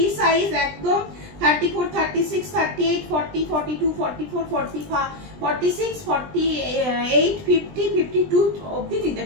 সাইজ একদম 34, 36, 38, 40, 42, 44, 45, 46, 48, 50, 52 অবধি নিতে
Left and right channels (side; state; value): left; late; 20 ms